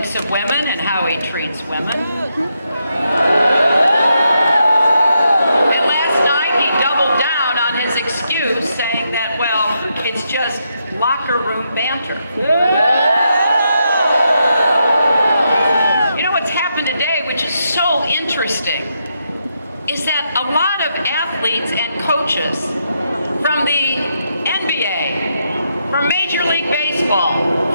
of women and how he treats women. And last night he doubled down on his excuse, saying that, well, it's just locker room banter. You know what's happened today, which is so interesting, is that a lot of athletes and coaches from the NBA, from Major League Baseball,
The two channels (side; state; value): both; inverted; correlation -0.81